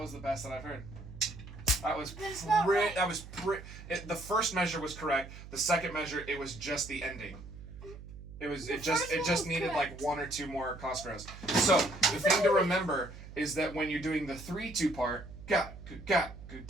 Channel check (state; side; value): noise; right; hum, 14 dB below the sound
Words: was the best that I've heard. The first measure was correct. The second measure, it was just the ending. It just needed like one or two more Cosgroves. So the thing to remember is that when you're doing the 3-2 part, that